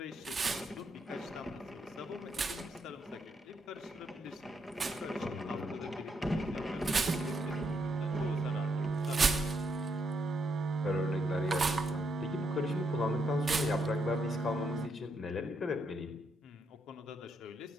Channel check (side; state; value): both; normal; correlation 0.78